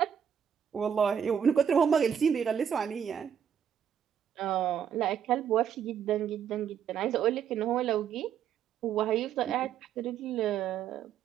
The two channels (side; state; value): left; quieter; 8.4 dB